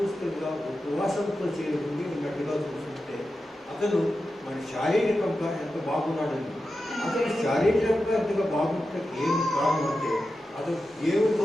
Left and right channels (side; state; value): both; normal; correlation 0.91